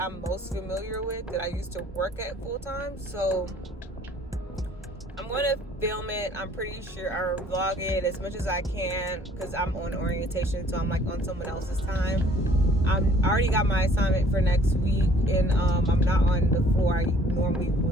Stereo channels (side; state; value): both; normal; correlation 0.57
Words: most familiar with, that I used to work at full time. So I'm going to film it. I'm pretty sure I'll vlog it as much as I can because I'm on orientation, so I'm like on someone else's time. I already got my assignment for next week, and I'm not on the floor I normally